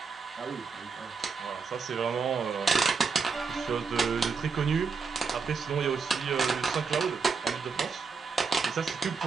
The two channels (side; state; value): left; quieter; 5.2 dB